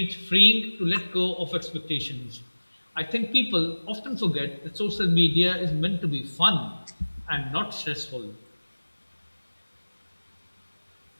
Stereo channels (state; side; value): inverted; both; correlation -1.00